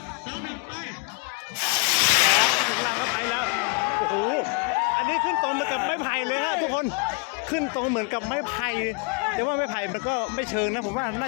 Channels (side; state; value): right; quieter; 32.8 dB